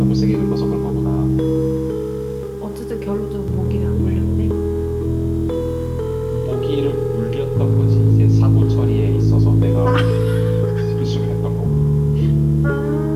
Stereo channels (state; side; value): identical; both; correlation 1.00